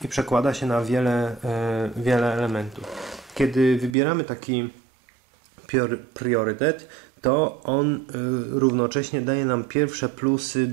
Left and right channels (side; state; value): left; drops out; at 4.0 s